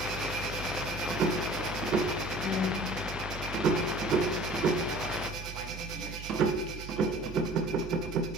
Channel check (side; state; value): right; noise; hum, 11 dB below the sound